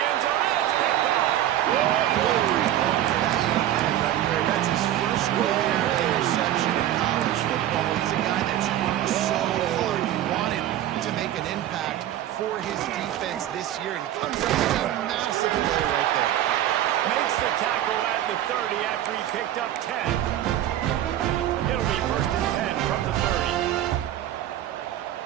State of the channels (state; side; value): quieter; left; 12.4 dB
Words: end zone. It's picked off. That's his first career interception in college football. He's a guy that's worked so hard. He wanted to make an impact for his defense this year, and comes up with a massive play right there. Makes the tackle at the 30 after he picked up 10. It'll be 1st and 10 from the 30.